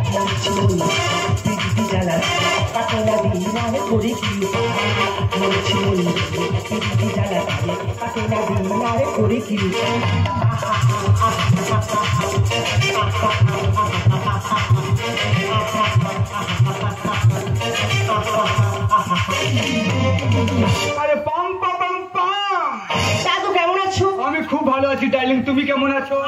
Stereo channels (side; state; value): both; identical; correlation 1.00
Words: পিটি চালা কাকে না দিন আর করে কি পিটি চালা কাকে না দিন আর করে কি আরে পাম পাম পাম দাদু কেমন আছো? আমি খুব ভালো আছি ডার্লিং, তুমি কেমন আছো?